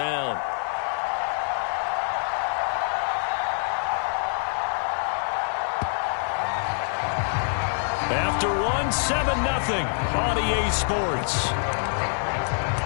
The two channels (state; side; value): silent; right; digital silence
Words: After one, 7-0 on EA Sports.